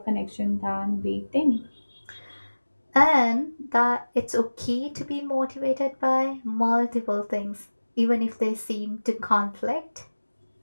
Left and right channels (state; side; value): inverted; both; correlation -1.00